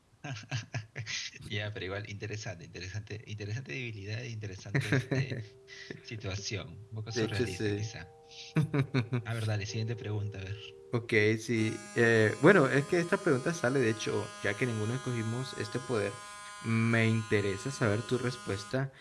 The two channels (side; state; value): both; identical; correlation 1.00